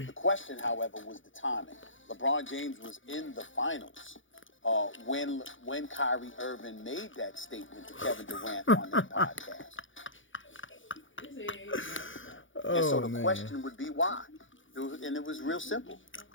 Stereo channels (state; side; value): late; right; 0.56 ms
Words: question, however, was the timing. LeBron James was in the finals when Kyrie Irving made that statement to Kevin Durant on that podcast. And so the question would be why. It was real simple.